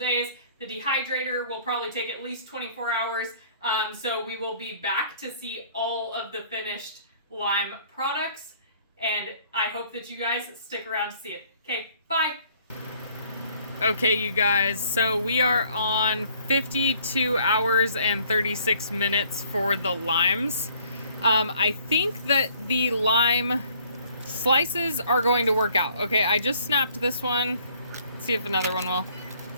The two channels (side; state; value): both; inverted; correlation -0.59